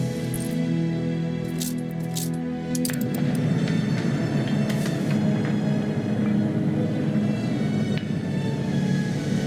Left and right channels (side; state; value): both; identical; correlation 1.00